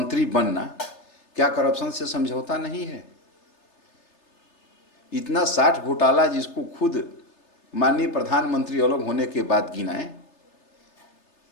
बनना क्या करप्शन से समझौता नहीं है? इतना 60 घोटाला जिसको खुद माननीय प्रधानमंत्री अलग होने के बाद गिनाए,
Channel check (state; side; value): late; right; 3.3 ms